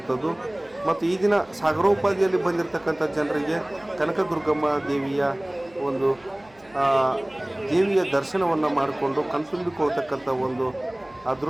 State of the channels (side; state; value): right; noise; hum, 29 dB below the sound